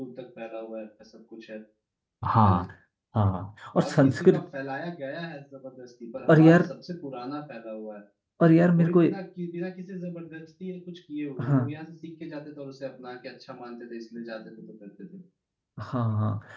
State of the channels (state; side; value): identical; both; correlation 1.00